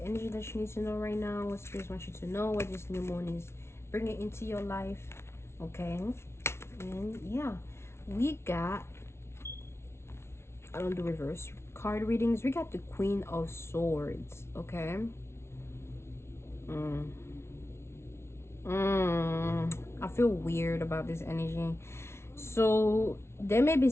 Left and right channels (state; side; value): late; right; 0.12 ms